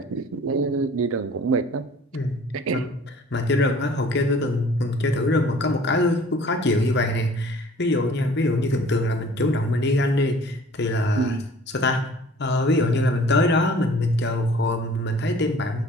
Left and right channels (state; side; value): normal; both; correlation 0.50